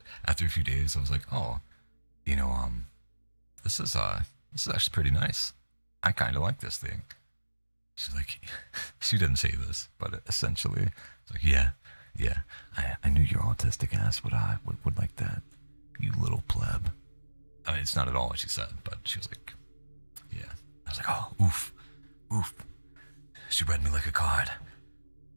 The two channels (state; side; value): inverted; both; correlation -1.00